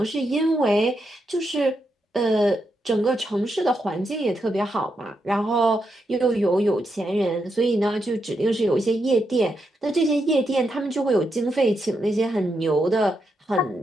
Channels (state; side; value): normal; both; correlation 0.83